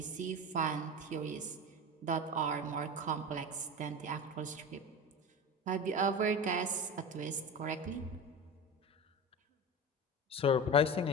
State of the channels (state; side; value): normal; both; correlation 0.27